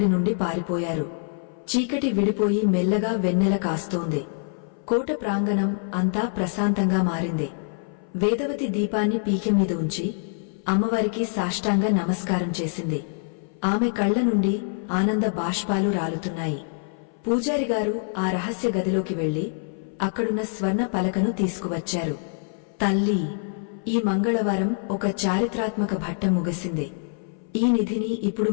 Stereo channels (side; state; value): right; silent; 59 dB below the other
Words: నుండి పారిపోయారు. చీకటి విడిపోయి మెల్లగా వెన్నెల కాస్తోంది. కోట ప్రాంగణం అంతా ప్రశాంతంగా మారింది. వేదవతి దీపాన్ని పీకె మీద ఉంచి అమ్మవారికి సాష్టాంగ నమస్కారం చేసింది. ఆమె కళ్ల నుండి ఆనంద బాష్పాలు రాలుతున్నాయి. పూజారిగారు ఆ రహస్య గదిలోకి వెళ్లి అక్కడున్న స్వర్ణ పలకను తీసుకువచ్చారు. తల్లి, ఈ మంగళవారం ఒక చారిత్రాత్మక ఘట్టం ముగిసింది. ఈ నిధిని ఇప్పుడు